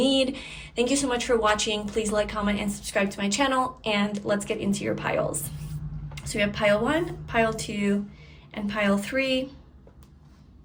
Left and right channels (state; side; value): identical; both; correlation 1.00